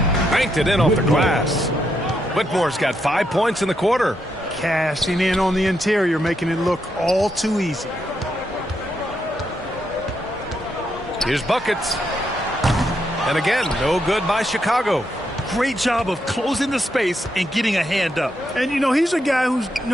Banked it in off the glass. Whitmore's got 5 points in the quarter. Cashing in on the interior, making it look all too easy. Here's buckets. And again, no good by Chicago. Great job of closing the space and getting a hand up. And, you know, he's a guy who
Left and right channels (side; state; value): both; normal; correlation 0.80